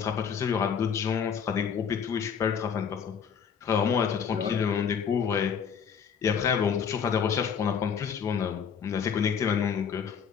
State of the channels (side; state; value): right; quieter; 7.1 dB